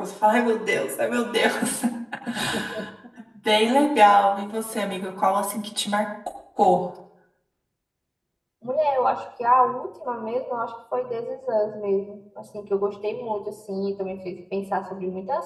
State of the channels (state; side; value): identical; both; correlation 1.00